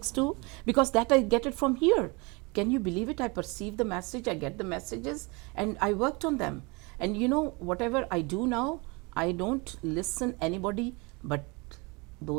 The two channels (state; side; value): quieter; left; 28.1 dB